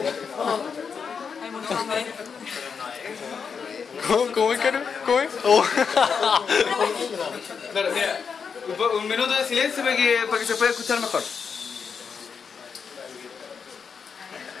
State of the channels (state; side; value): quieter; right; 6.2 dB